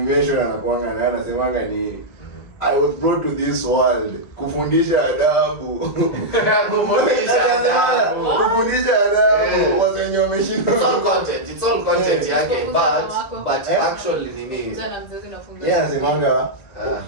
anakuanga na anasemanga ni I was brought to this world kufundisha adabu. Kufundisha adabu. Wasenyo wameshinda. It's all content yake but actually nini? Yeah, anasemanga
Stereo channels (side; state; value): right; late; 1.8 ms